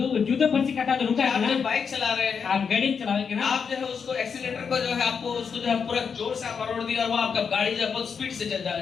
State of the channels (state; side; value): quieter; right; 6.3 dB